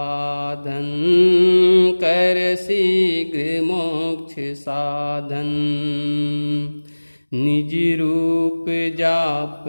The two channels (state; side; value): inverted; both; correlation -1.00